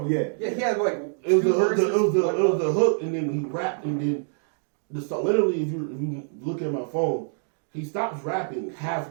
me, yeah. Yeah, he had like It was two the hook, verses. it was one the hook. hook, and then he rapped, and then the song. Literally, if you look at my phone, he stops rapping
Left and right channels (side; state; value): left; silent; digital silence